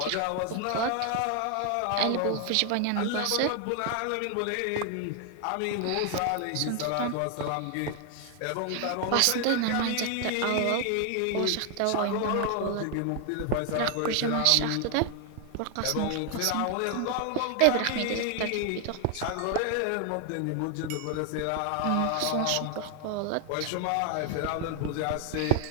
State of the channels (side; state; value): both; different; correlation 0.00